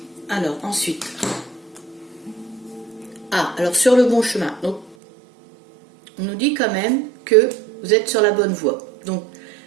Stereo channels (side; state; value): left; drops out; at 5.0 s